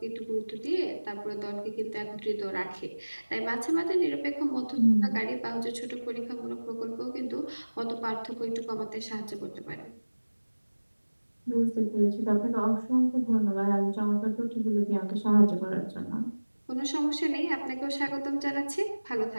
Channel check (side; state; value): both; inverted; correlation -1.00